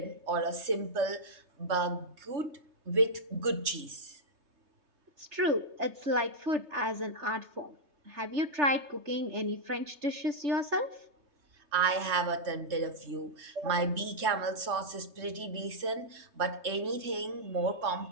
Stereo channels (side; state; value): left; late; 3.3 ms